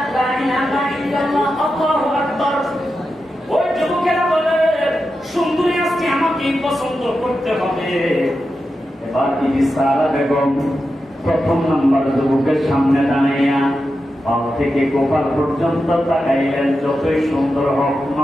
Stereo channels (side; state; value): both; normal; correlation 0.89